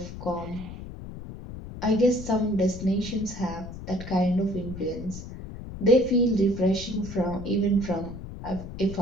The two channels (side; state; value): left; noise; rumble, 11 dB below the sound